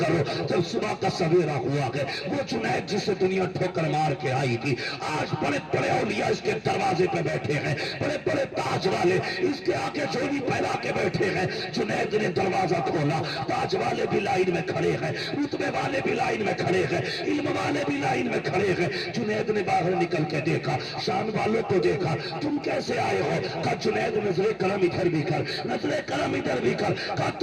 جب صبح کا سویرا ہوا ہے وہ جنید جسے دنیا ٹھوکر مار کے آئی تھی, آج بڑے بڑے اولیاء اس کے دروازے پہ بیٹھے ہیں, بڑے بڑے تاج والے اس کے آگے جھولی پھیلا کے بیٹھے ہیں. جنید نے دروازہ کھولا, تاج والے بھی لائن میں کھڑے ہیں, رتبے والے بھی لائن میں کھڑے ہیں, علم والے بھی لائن میں کھڑے ہیں. جنید نے باہر نکل کے دیکھا, شان والوں کو دیکھا, تم کیسے آئے ہو. کہا جنید نظر کرم ادھر بھی کر, نظر کرم ادھر بھی کر. کہا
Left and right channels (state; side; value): identical; both; correlation 1.00